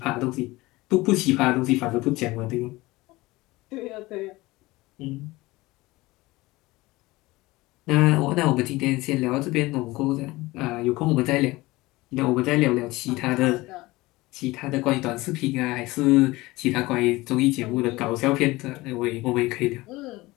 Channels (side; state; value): right; quieter; 20.3 dB